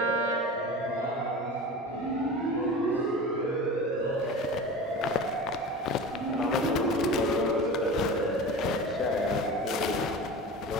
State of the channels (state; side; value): normal; both; correlation 0.33